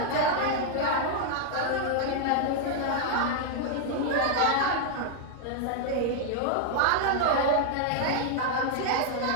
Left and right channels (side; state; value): both; different; correlation 0.00